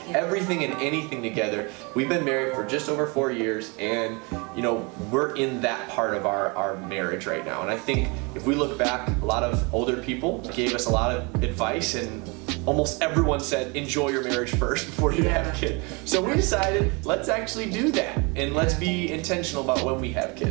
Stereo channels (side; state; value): left; quieter; 29.5 dB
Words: everything and anything together. We've been married for just over 4 years, and you know, we're in that part of our marriage right now. And I think if we look back, a lot of older people gave us a lot of advice, and almost everyone said enjoy your marriage first before you have kids. So we decided let's actually do that, and let's be intentional about when we have